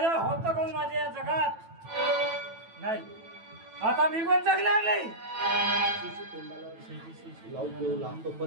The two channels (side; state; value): left; late; 9.1 ms